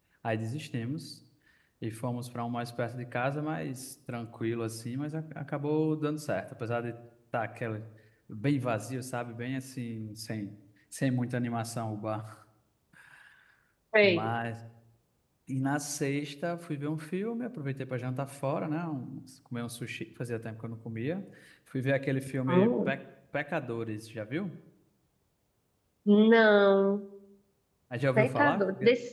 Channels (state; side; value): identical; both; correlation 1.00